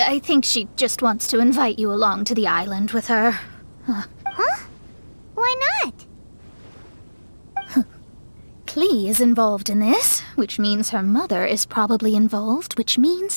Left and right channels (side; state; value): both; inverted; correlation -1.00